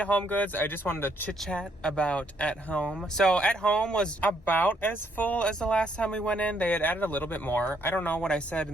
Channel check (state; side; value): normal; both; correlation 0.71